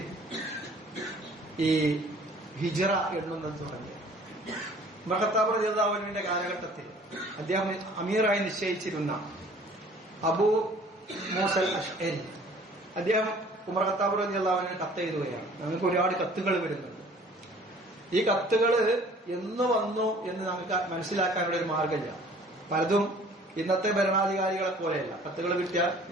ഈ ഹിജ്റ എണ്ണുന്നത് തുടങ്ങിയത് ഉമർ ഖത്താബ് റളിയല്ലാഹു അൻഹുവിന്റെ കാലഘട്ടത്തിൽ അദ്ദേഹം അമീറായി നിശ്ചയിച്ചിരുന്ന അബൂ മൂസൽ അശ്അരി അദ്ദേഹം ഉമർ ഖത്താബ് റളിയല്ലാഹു അൻഹു കത്ത് എഴുതുകയാണ്. നമുക്ക് ഒരുപാട് കത്തുകൾ വരുന്നുണ്ട്. ഈ കത്തുകൾ എന്ന് വന്നു എന്ന് നമുക്ക് മനസ്സിലാക്കാനുള്ള ഒരു മാർഗമില്ല. പലതും ഇന്നത്തെ ഭരണാധികാരികളെ പോലെയല്ല. കത്തുകൾ കിട്ടിയാൽ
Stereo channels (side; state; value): both; normal; correlation 0.52